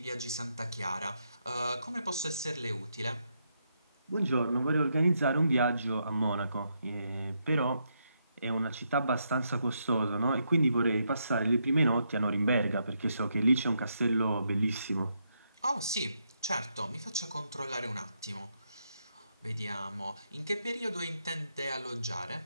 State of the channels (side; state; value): both; inverted; correlation -0.80